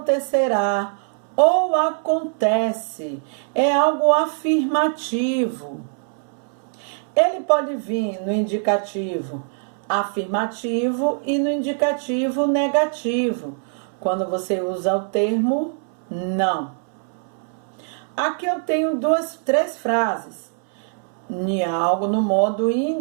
ou acontece. É algo afirmativo. Ele pode vir no indicativo afirmativo e no indicativo negativo, quando você usa o termo não. Aqui eu tenho 3 frases. Algo no modo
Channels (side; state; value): left; silent; 64 dB below the other